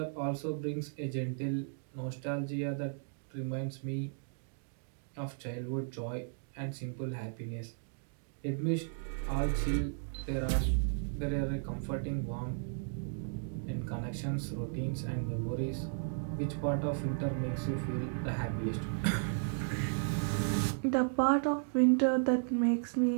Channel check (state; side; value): silent; left; digital silence